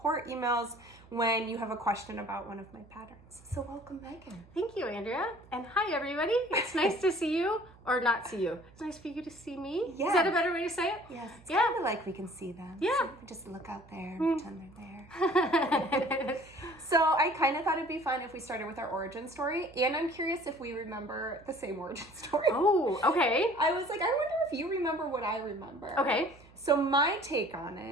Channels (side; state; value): right; noise; hum, 24 dB below the sound